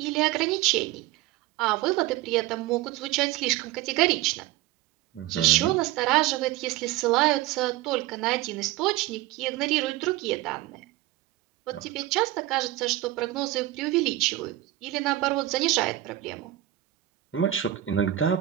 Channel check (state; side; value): quieter; left; 15.3 dB